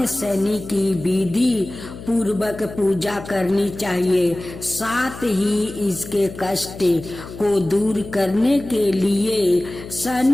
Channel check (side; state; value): left; noise; hum, 13 dB below the sound